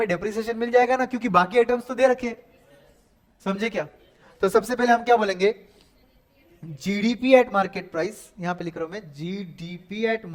डेप्रिसिएशन मिल जाएगा ना, क्योंकि बाकी आइटम्स तो दे रखे हैं। समझे क्या? तो सबसे पहले हम क्या बोलेंगे, जीडीपी एट मार्केट प्राइस, यहां पे लिख रहा हूं मैं, GDP at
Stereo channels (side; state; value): both; identical; correlation 1.00